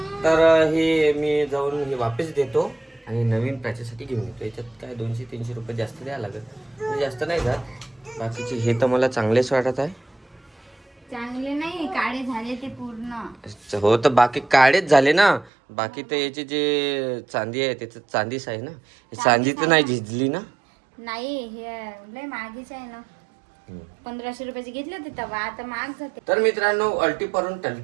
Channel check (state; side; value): drops out; left; at 15.5 s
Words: तर हे मी जाऊन हे वापस देतो आणि नवीन प्राच्यासाठी घेऊन येतो. याच्यात काय 200-300 रुपये जास्त द्यावं लागत, म्हणजे जास्त नाही जात. बाकीचे हे तर मला चांगलेच वाटत आहे. चांगले नाही, काळे झाले ते पूर्ण. हो, तर बाकी काळेच झाले ना. बाकी तर याची जे चांदी आहे त्याचं चांदीच आहे ना. हे चांदी तर नाही झिजली ना. नाही, हे लय महागीच आहे ना. 1500 रुपयाची घेतली होती तेव्हा, आता महाग जाते. तर मित्रांनो अल्टी परून